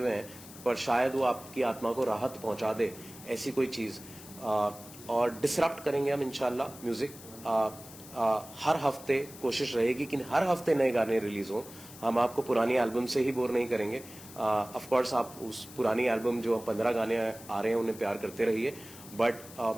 हैं, पर शायद वो आपकी आत्मा को राहत पहुंचा दे, ऐसी कोई चीज। और डिसरप्ट करेंगे हम इंशाल्लाह म्यूजिक। हर हफ्ते कोशिश रहेगी कि हर हफ्ते नए गाने रिलीज हों। हम आपको पुरानी एल्बम से ही बोर नहीं करेंगे। ऑफ कोर्स आप उस पुरानी एल्बम जो 15 गाने आ रहे हैं उन्हें प्यार करते रहिए, बट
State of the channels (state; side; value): noise; left; hiss, 17 dB below the sound